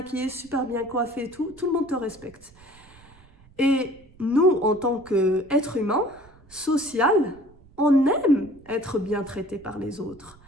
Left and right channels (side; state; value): right; noise; rumble, 26 dB below the sound